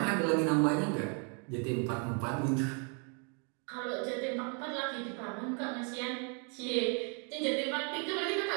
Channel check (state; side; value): quieter; left; 38.2 dB